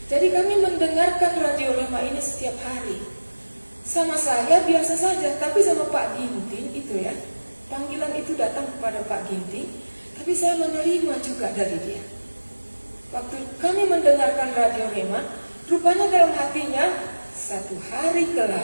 Jadi kami mendengarkan Radio Rema ini setiap hari. Sama saya biasa saja, tapi sama Pak Ginting itu ya, panggilan itu datang kepada Pak Ginting, tapi saya menerima juga dari dia. Waktu kami mendengarkan Radio Rema, rupanya dalam hatinya, satu hari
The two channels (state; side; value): inverted; both; correlation -1.00